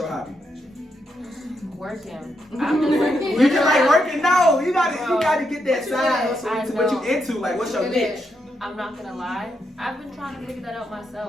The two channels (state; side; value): normal; both; correlation 0.81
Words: hobby? Working. I'm just working. You just like working? No, you gotta get that side hustle. What you into? Like what's your niche? I'm not gonna lie. I've been trying to figure that out